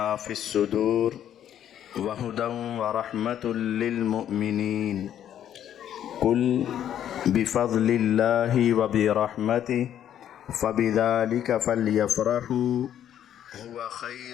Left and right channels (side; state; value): right; quieter; 10.4 dB